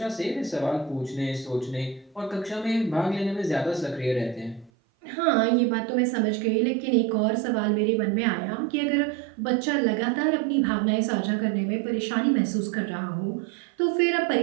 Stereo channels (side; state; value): left; drops out; at 4.7 s